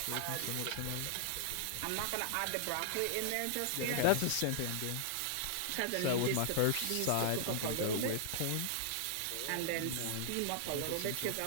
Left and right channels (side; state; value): both; different; correlation -0.01